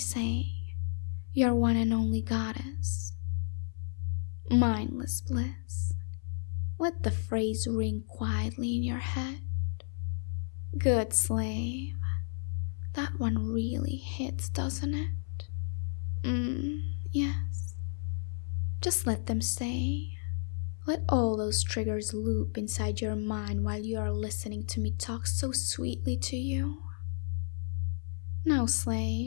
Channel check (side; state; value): right; silent; 56 dB below the other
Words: your one and only goddess. Mindless bliss, let the phrase ring quietly in your head. Good slave. That one really hits, doesn't it? Yes. Just let them stay. Let all those triggers loop inside your mind while you are listening to me talk so sweetly to you. Now,